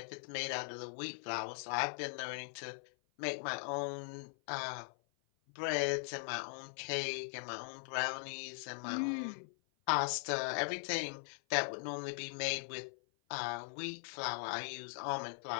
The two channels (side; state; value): right; silent; 51 dB below the other